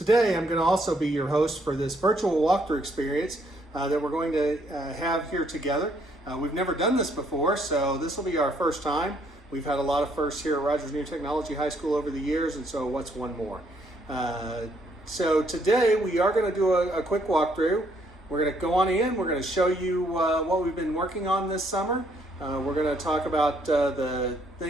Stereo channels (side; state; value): both; normal; correlation 0.69